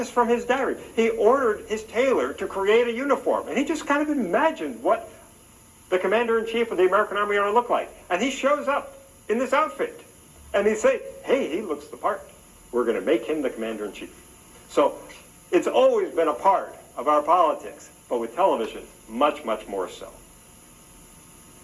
from his diary, he ordered his tailor to create a uniform, and he just kind of imagined what the commander-in-chief of the American Army ought to look like. And he shows up in this outfit, and he say, hey, he looks the part. We're going to make him the commander-in-chief. So it's always been a part of our politics, but with television, much, much more so.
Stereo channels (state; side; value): identical; both; correlation 1.00